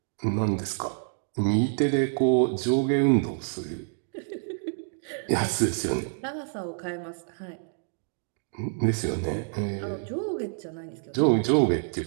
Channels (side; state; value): left; silent; digital silence